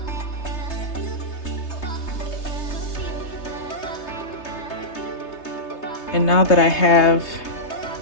and now that I have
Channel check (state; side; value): late; right; 3.3 ms